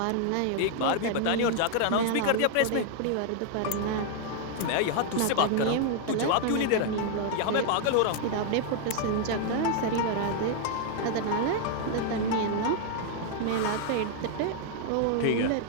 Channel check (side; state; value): both; different; correlation 0.00